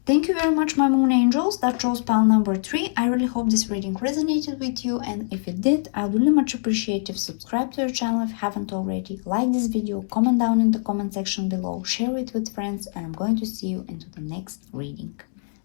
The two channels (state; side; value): silent; right; digital silence